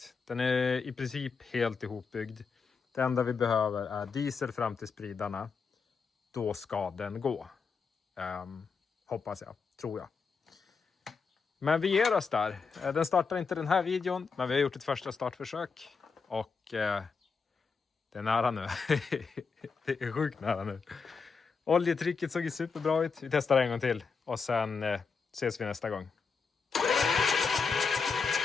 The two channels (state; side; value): quieter; right; 5.2 dB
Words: Den är i princip helt ihopbyggd. Det enda vi behöver är diesel fram till spridarna. Då ska den gå. Hoppas jag, tror jag. Men vi ger oss där. Den startar inte den här videon, men vi har gjort ett första startförsök. Och det är nära nu. Det är sjukt nära nu. Oljetrycket såg ju superbra ut. Vi testar en gång till. Och sen ses vi nästa gång.